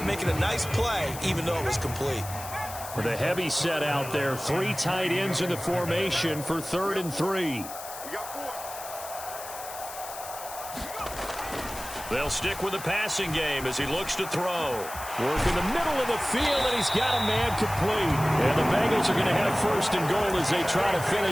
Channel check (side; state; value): left; noise; hiss, 12 dB below the sound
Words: making a nice play, even though it was complete. With a heavy set out there, 3 tight ends in the formation for 3rd and 3. They'll stick with the passing game as he looks to throw. Work in the middle of the field, and he's got a man complete. And the Bengals are going to have 1st and goal as they try to